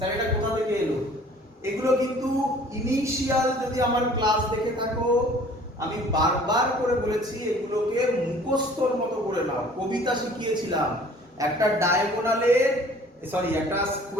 এটা কোথা থেকে এলো। এগুলো কিন্তু ইনিশিয়াল যদি আমার ক্লাস দেখে থাকো, আমি বারবার করে বলেছি এগুলোকে মুখস্থর মতো করে নাও। কবিতা শিখিয়েছিলাম, একটা ডায়াগোনালের একটা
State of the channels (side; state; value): both; normal; correlation 0.51